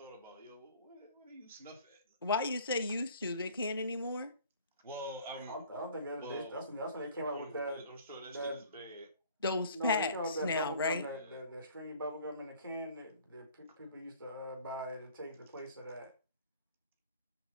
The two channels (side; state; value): both; inverted; correlation -0.51